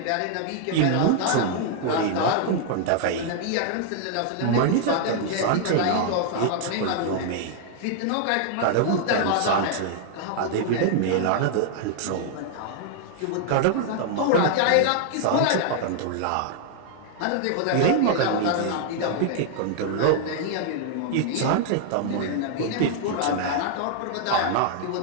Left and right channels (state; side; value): different; both; correlation -0.01